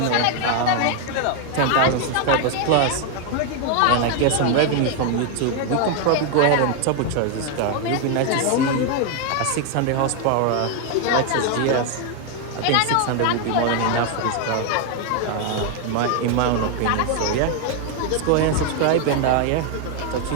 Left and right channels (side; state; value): both; different; correlation 0.01